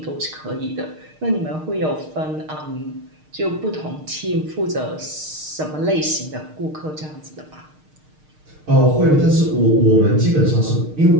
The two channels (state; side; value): late; left; 6.5 ms